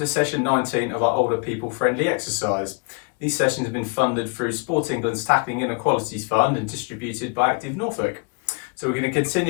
session 19 of our older people friendly exercise. These sessions have been funded through Sport England's Tackling Inequalities Fund and distributed by Active Norfolk. So we're going to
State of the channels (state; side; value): quieter; right; 34.5 dB